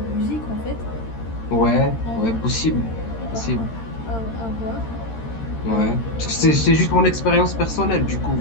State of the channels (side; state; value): right; late; 13 ms